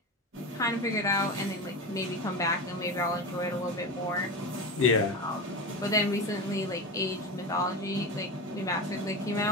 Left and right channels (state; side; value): normal; both; correlation 0.23